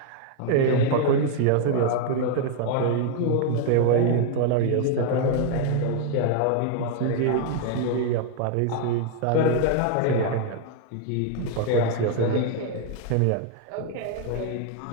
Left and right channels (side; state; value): both; different; correlation 0.00